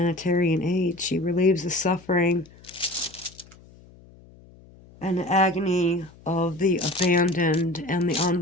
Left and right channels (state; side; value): noise; left; hum, 24 dB below the sound